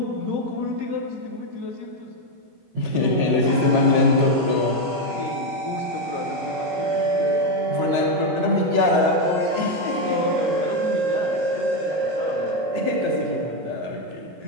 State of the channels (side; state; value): left; late; 22 ms